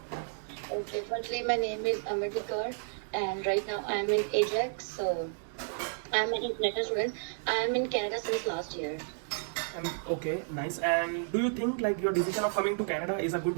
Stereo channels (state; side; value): silent; left; digital silence